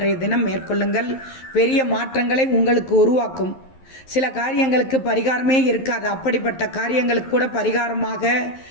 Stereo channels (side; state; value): right; late; 11 ms